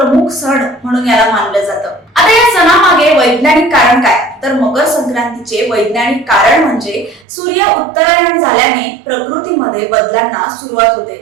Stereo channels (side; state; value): left; drops out; at 7.2 s